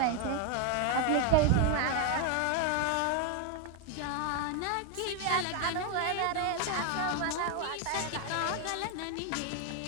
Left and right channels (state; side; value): different; both; correlation 0.01